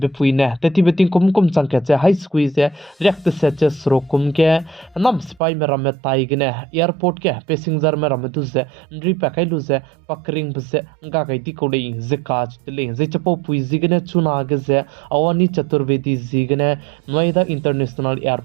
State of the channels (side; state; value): left; drops out; at 5.4 s